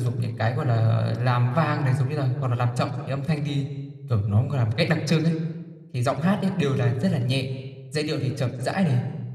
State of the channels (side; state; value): both; identical; correlation 1.00